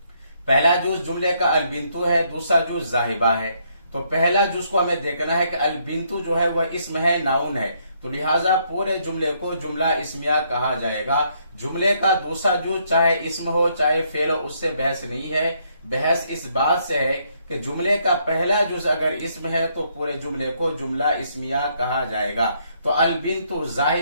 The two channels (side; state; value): both; inverted; correlation -0.71